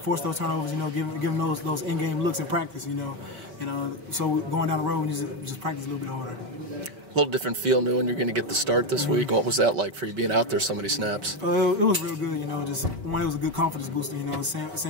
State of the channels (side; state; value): left; late; 4.8 ms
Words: force those turnovers. Give them those in-game looks in practice. So going down the road, we just practice a little bit harder. A little different feel knowing you're going to get the start this week. What was that like for you being out there so many snaps? It was real good, just one, it was a good confidence booster,